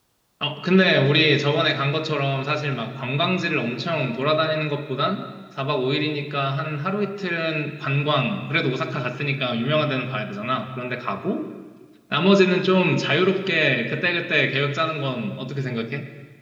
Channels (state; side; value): identical; both; correlation 1.00